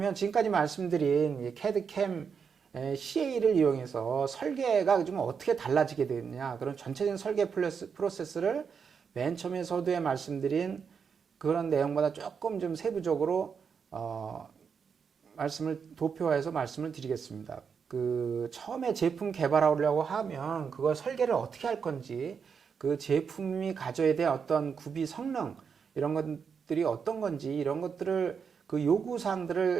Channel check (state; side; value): quieter; left; 6.4 dB